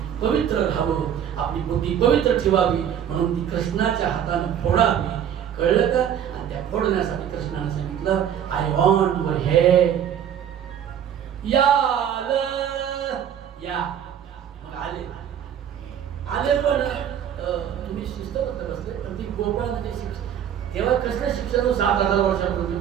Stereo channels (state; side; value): quieter; left; 9.4 dB